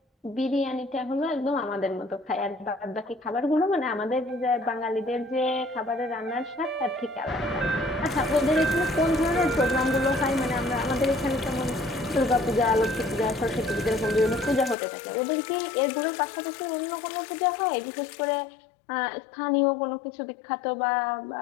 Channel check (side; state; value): right; drops out; at 14.8 s